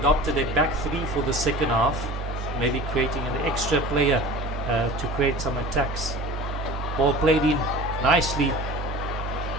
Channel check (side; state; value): both; normal; correlation 0.39